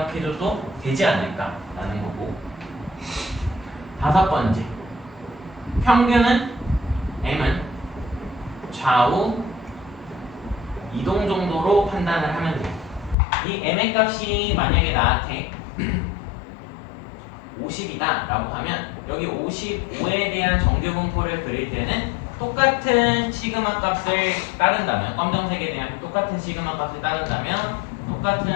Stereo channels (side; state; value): right; drops out; at 13.2 s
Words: 되지 않을까라는 거고. 다섯 번째, 평균은 m은 좌우 이동 정도로 판단을 하면 돼요. 이 m의 값이 만약에 나한테 50이다 라고 하면 여기 55에 대한 정규분포를 그릴 때는 똑같은 시그마 값을 따른다면, 검정색에 대한 똑같은 시그마 값을 따른다면